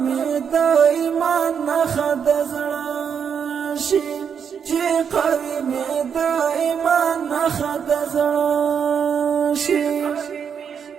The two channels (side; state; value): left; quieter; 7.3 dB